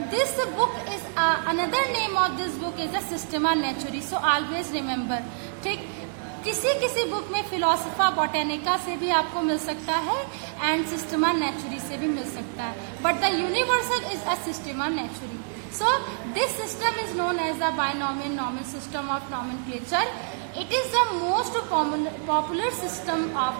this book is another name of this book is a Systema Naturae. So always remember, ठीक, किसी किसी book में फिलोसफा बॉटेनिका से भी आपको मिल सकता है and Systema नेचुरी से भी मिल सकता है, but the universal is a Systema Naturae. So this system is known as a binomial nominal system of nomenclature. It is the most popular system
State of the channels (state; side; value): silent; left; digital silence